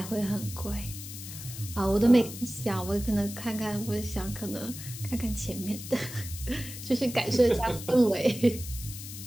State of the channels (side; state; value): left; noise; hiss, 11 dB below the sound